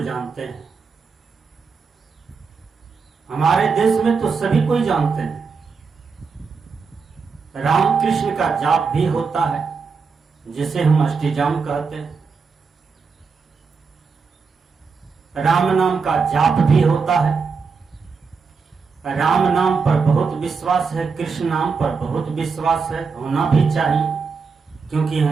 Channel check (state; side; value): quieter; left; 5.2 dB